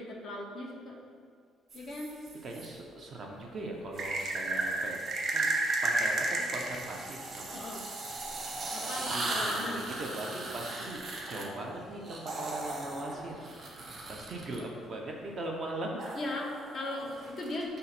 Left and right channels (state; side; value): normal; both; correlation 0.72